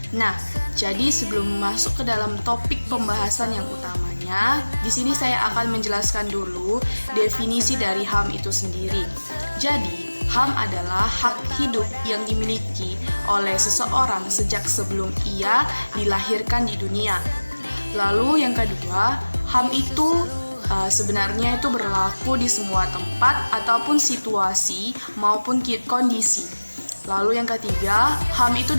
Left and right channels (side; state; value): both; inverted; correlation -1.00